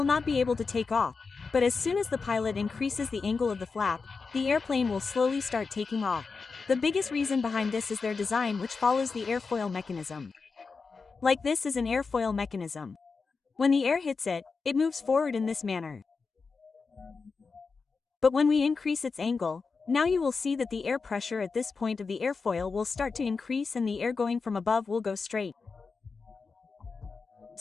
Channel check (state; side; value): quieter; right; 4.7 dB